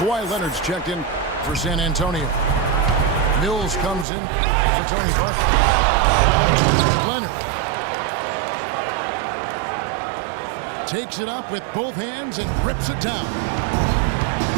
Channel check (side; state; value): left; drops out; at 4.0 s